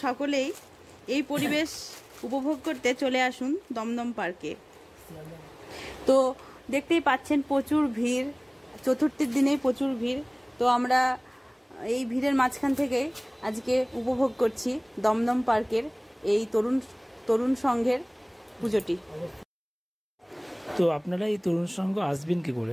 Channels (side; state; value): both; identical; correlation 1.00